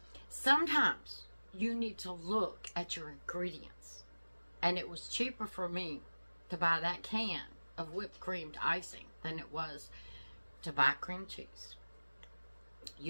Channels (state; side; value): inverted; both; correlation -1.00